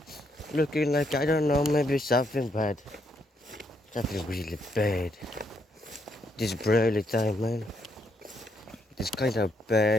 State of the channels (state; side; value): normal; both; correlation 0.75